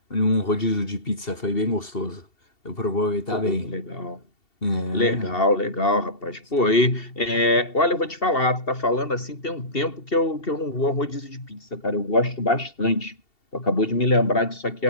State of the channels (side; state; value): right; late; 2.7 ms